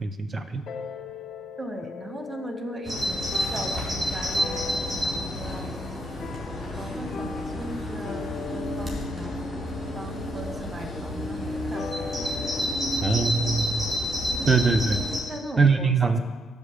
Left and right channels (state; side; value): normal; both; correlation 0.76